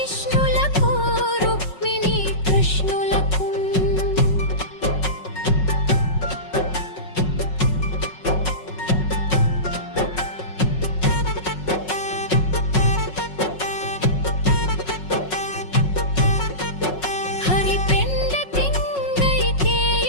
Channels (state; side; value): late; right; 5.4 ms